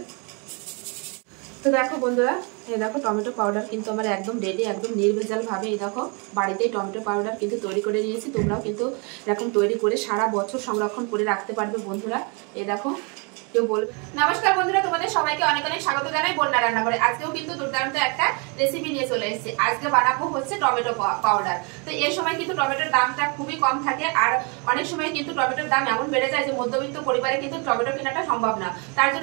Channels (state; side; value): quieter; left; 33.6 dB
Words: তো দেখো বন্ধুরা, এই দেখো টমেটো পাউডার কিন্তু আমার একদম রেডি, একদম নির্ভেজালভাবে এই দেখো বাড়িতেই টমেটো পাউডার কিন্তু তৈরি করে নিয়েছি। তোমরাও কিন্তু এরকম তৈরি করে সারা বছর সংরক্ষণ করে রাখতে পারবে বন্ধুরা। এই দেখো কেউ বলবে। নমস্কার বন্ধুরা, তোমাদের সবাইকে অনেক অনেক স্বাগত জানাই বন্যা রান্না করে। আজকেও কিন্তু দুর্দান্ত একটা রেসিপি নিয়ে চলে এসেছি। আজকে বানাবো হচ্ছে টমেটো পাউডার। তো এই সময় কিন্তু টমেটোর দামটা খুবই কম থাকে, আর অনেক সময় কিন্তু টমেটোর দাম এমন বেড়ে যায় যে মধ্যবিত্ত পরিবারে কিন্তু টমেটো কেনাটা সম্ভব না। তার